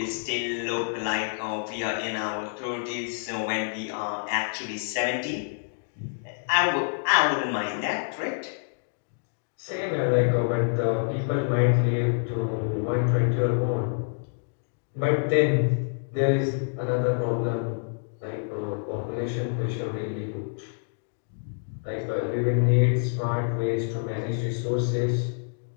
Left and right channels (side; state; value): right; silent; digital silence